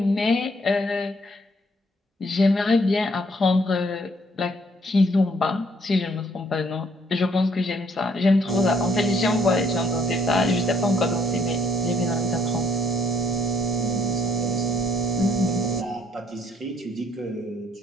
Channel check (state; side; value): normal; both; correlation 0.67